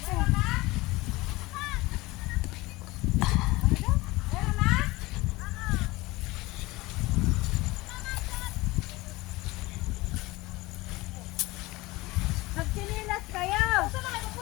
Nagtinilas kayo. Saan na kayo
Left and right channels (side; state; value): right; quieter; 21.0 dB